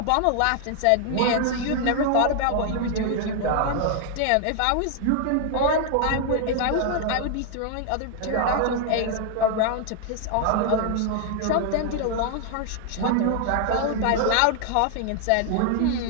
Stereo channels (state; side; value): different; both; correlation 0.00